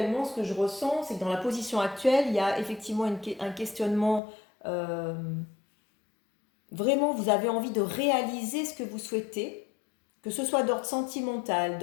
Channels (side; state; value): right; drops out; at 4.2 s